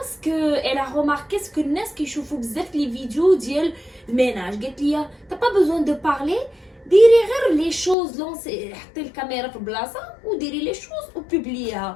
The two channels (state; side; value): drops out; right; at 8.0 s